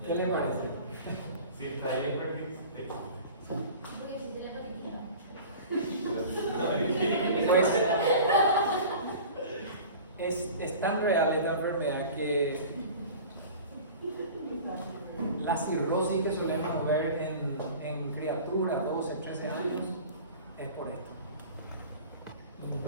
¿Qué le parece? Si está ahí, Porque existe la hepatitis. Pues es tan real esta enfermedad que la cirrosis que solemos ver en criaturas 12, 13 años es por esto.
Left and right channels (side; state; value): both; inverted; correlation -0.40